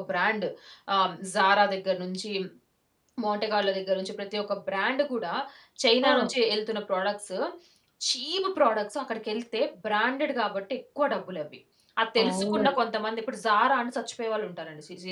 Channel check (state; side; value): identical; both; correlation 1.00